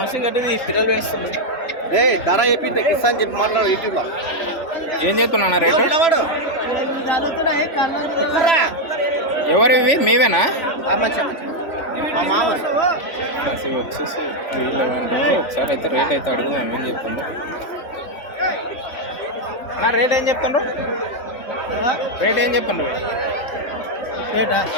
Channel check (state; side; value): late; right; 3.4 ms